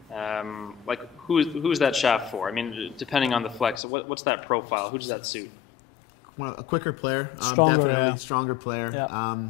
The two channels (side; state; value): right; drops out; at 3.8 s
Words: Like who's that shaft for? I mean, depending on the flex, what's that profile? Who does that suit? A quicker player, definitely stronger player. Yeah.